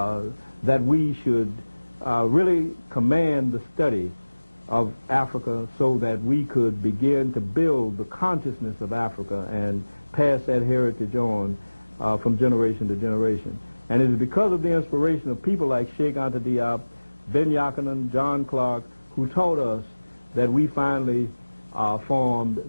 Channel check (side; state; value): both; inverted; correlation -1.00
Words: that we should really command the study of Africa so that we could begin to build the consciousness of Africa and pass that heritage on from generation to generation. And it is because of the inspiration of people like Cheikh Anta Diop, Ben Yakinen, John Clark, who taught us that we finally